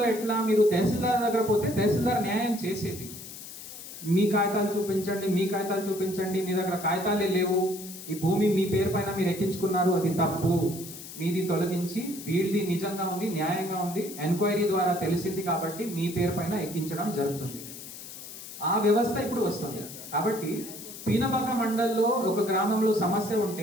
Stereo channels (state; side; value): noise; left; hiss, 13 dB below the sound